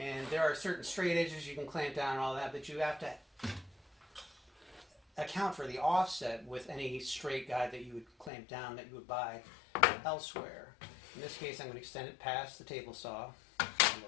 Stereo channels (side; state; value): right; drops out; at 8.3 s